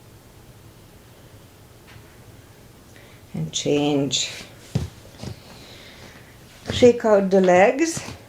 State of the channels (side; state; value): both; identical; correlation 1.00